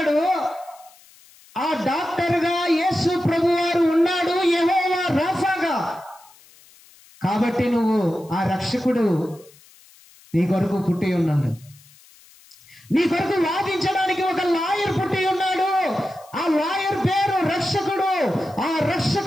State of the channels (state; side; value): noise; left; hiss, 26 dB below the sound